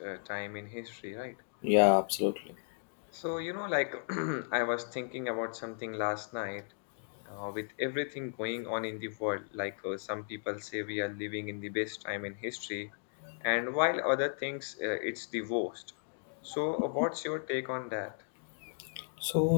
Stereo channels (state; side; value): silent; right; digital silence